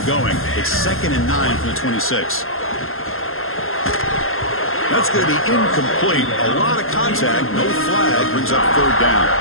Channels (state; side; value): late; right; 0.61 ms